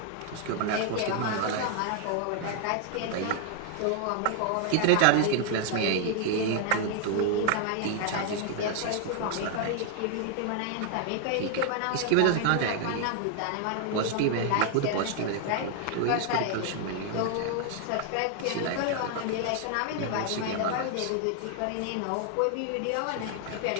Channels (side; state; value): both; different; correlation 0.00